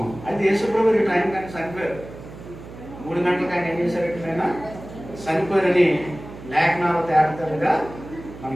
అయితే యేసుప్రభు ఈ టైం కానీ చనిపోయారు. 3 గంటలకు ఆయన ఏం చేశారంటే ఆయన చనిపోయారని లేఖనాలు తేటతెల్లగా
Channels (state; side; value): noise; right; hum, 15 dB below the sound